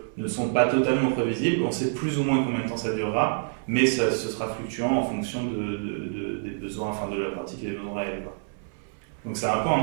ne sont pas totalement prévisibles. On sait plus ou moins combien de temps ça durera, mais ce sera fluctuant en fonction des besoins, enfin de la pratique et des besoins réels, quoi. Donc c'est un peu un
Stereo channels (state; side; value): silent; left; 60 dB below the other